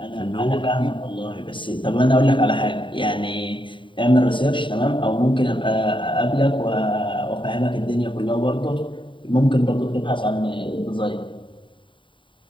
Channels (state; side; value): late; right; 0.24 ms